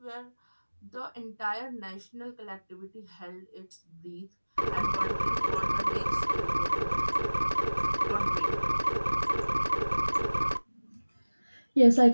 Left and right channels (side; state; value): both; inverted; correlation -1.00